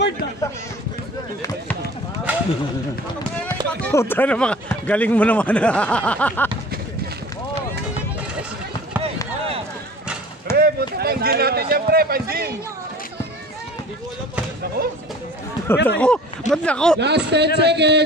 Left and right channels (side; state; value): both; normal; correlation 0.44